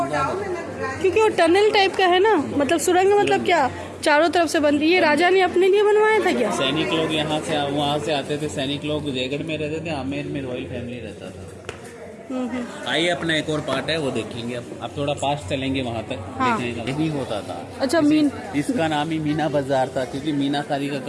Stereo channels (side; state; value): both; identical; correlation 1.00